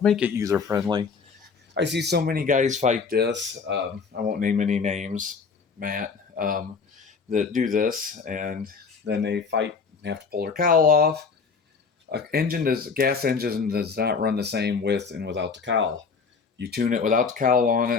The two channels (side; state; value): right; quieter; 5.2 dB